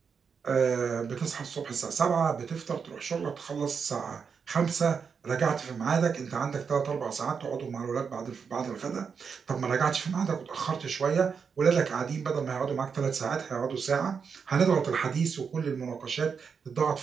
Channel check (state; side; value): quieter; left; 6.1 dB